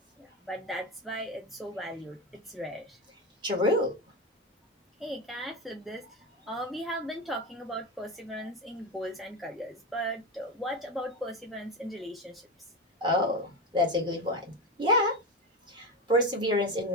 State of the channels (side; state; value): both; normal; correlation 0.19